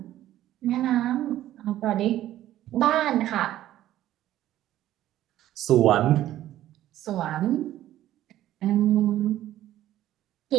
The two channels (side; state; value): left; quieter; 13.3 dB